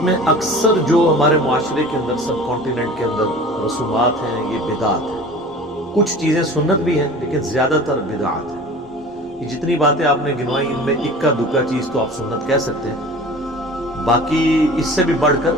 اکثر جو ہمارے معاشرے کے اندر سب کانٹیننٹ کے اندر رسومات ہیں، یہ بدعات ہیں۔ کچھ چیزیں سنت بھی ہیں لیکن زیادہ تر بدعات ہیں۔ یہ جتنی باتیں آپ نے گنوائی، ان میں اکا دکا چیز تو آپ سنت کہہ سکتے ہیں، باقی اس سے بھی بڑھ کر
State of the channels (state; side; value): noise; left; hum, 27 dB below the sound